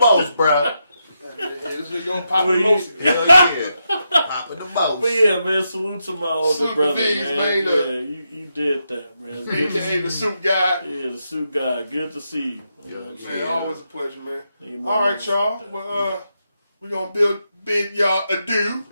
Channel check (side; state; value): both; inverted; correlation -0.84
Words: bro. this nigga gonna pop the most. Hell yeah. Popping the most. But yeah, man, salute to my older Salute brother, to these, man. man. Yeah, you did that, man. Good to see AKA the you. suit guy. Yeah, the suit guy. Good to see you. Yeah, Man, always a pleasure, man. Man, All right, y'all. Well, We're going to bid y'all adieu.